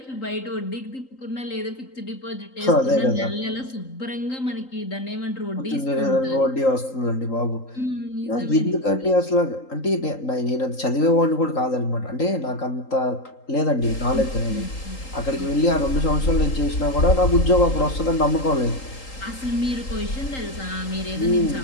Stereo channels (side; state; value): right; late; 3.8 ms